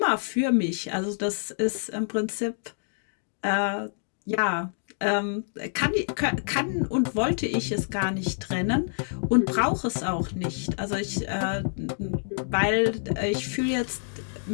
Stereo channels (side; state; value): right; silent; digital silence